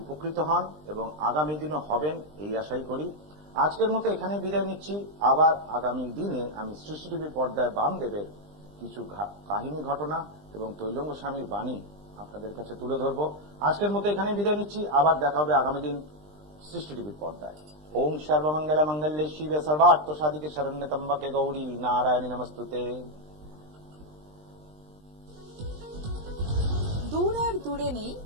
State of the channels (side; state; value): left; late; 20 ms